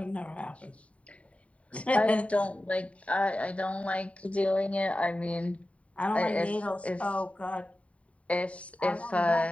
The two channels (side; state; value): right; late; 0.065 ms